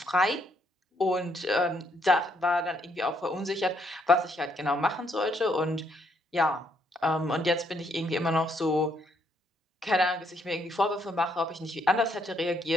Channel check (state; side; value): normal; both; correlation 0.72